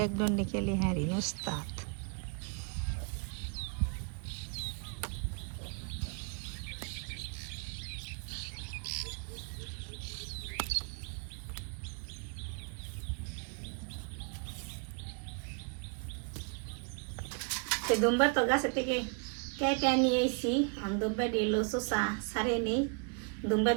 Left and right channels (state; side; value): quieter; left; 38.9 dB